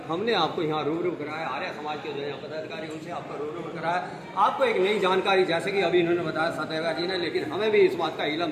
हमने आपको यहाँ रूबरू कराया, आर्य समाज के जो यहाँ पदाधिकारी उनसे आपको रूबरू कराया। आपको एक नई जानकारी, जैसे कि अभी इन्होंने बताया सचदेवा जी ने, लेकिन हमें भी इस बात का इल्म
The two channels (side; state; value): both; identical; correlation 1.00